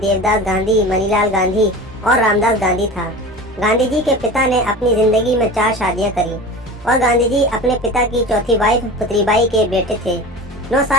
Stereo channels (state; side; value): normal; both; correlation 0.34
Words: गांधी, मनीलाल गांधी और रामदास गांधी था। गांधी जी के पिता ने अपनी जिंदगी में 4 शादियां करी और गांधी जी अपने पिता की चौथी वाइफ पुतलीबाई के बेटे थे। 9